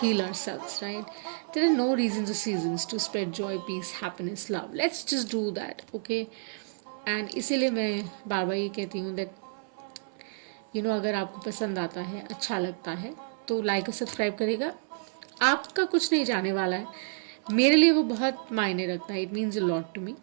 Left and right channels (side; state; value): left; silent; 58 dB below the other